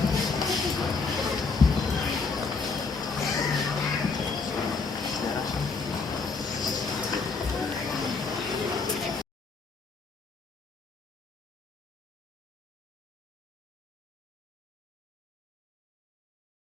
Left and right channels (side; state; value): right; quieter; 4.5 dB